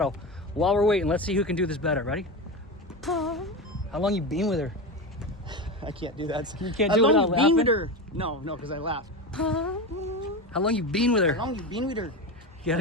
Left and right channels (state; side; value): normal; both; correlation 0.21